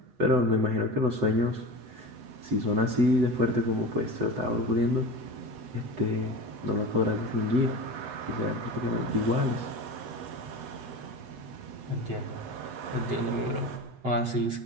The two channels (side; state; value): left; late; 8.0 ms